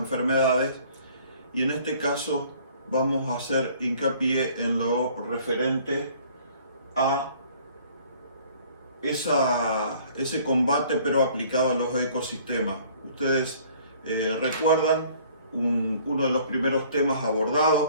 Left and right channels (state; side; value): inverted; both; correlation -0.55